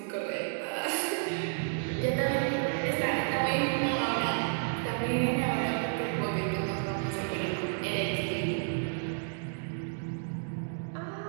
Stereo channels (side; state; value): left; silent; digital silence